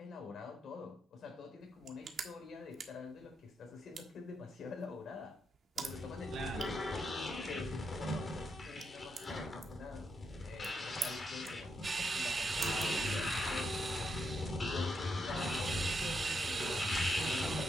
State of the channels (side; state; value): both; normal; correlation 0.82